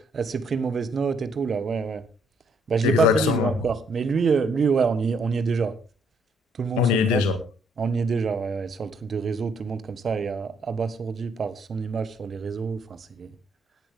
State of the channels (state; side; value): normal; both; correlation 0.68